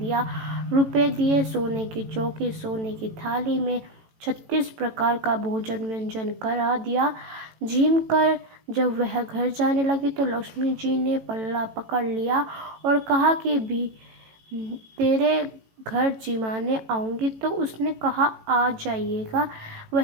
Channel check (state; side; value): late; left; 18 ms